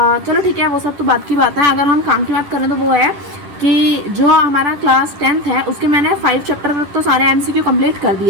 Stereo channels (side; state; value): left; late; 10 ms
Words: चलो ठीक है, वो सब तो बात की बात है। अगर हम काम की बात करें तो वो है कि जो हमारा क्लास 10th है उसके मैंने 5 चैप्टर तक तो सारे एमसीक्यू कंप्लीट कर